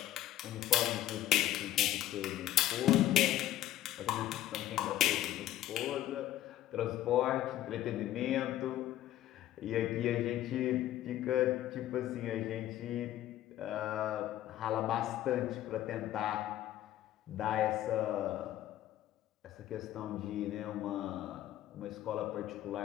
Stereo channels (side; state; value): right; quieter; 13.2 dB